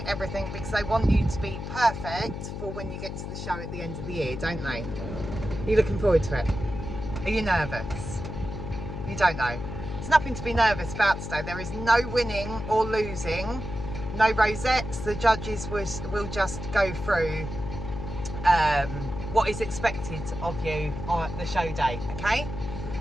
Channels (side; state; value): left; noise; hum, 7 dB below the sound